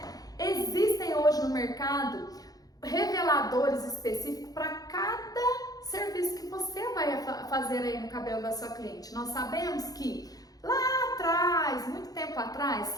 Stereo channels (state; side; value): late; right; 0.18 ms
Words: Existem hoje no mercado reveladores específicos para cada serviço que você vai fazer aí no cabelo da sua cliente. Nós sabemos que lá atrás, muito tempo atrás,